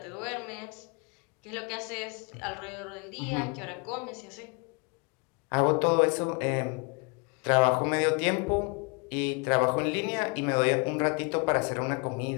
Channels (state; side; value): quieter; right; 33.3 dB